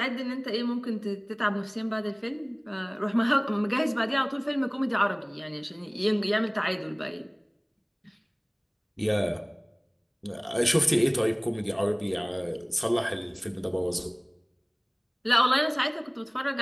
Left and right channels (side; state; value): both; identical; correlation 1.00